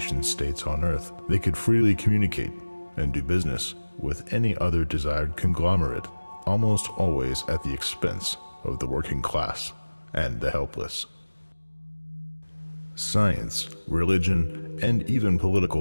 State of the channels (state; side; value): inverted; both; correlation -1.00